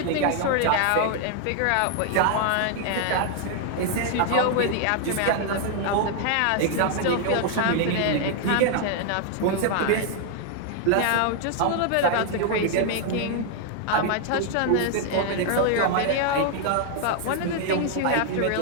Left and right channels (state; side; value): different; both; correlation 0.00